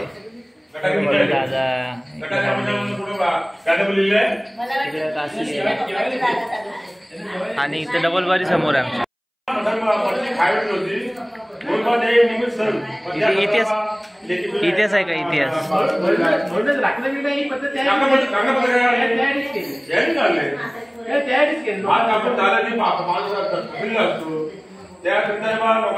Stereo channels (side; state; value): both; identical; correlation 1.00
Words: दादा आणि इथे डबल बारी समोर आहे आमच्या. इतिहास इतिहास आहे का इतिहास. त्या संदर्भात